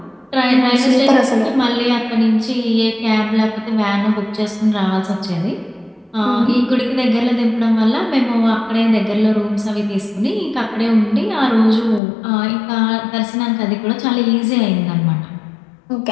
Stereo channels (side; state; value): right; drops out; at 12.0 s